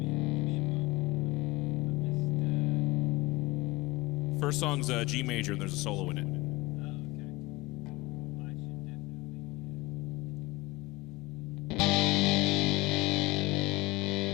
First song's G major, and there's a solo in it.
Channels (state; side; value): quieter; right; 21.0 dB